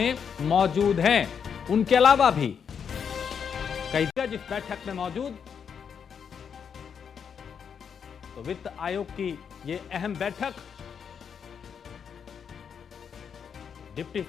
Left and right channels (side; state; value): right; quieter; 7.1 dB